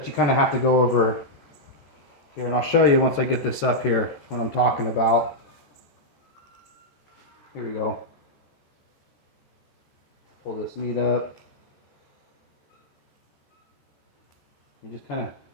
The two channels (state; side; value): late; right; 14 ms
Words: you kind of have to go over here, and I'll show you once I get this up here what I'm talking about. Here we go. Pull this meat up. You just kind of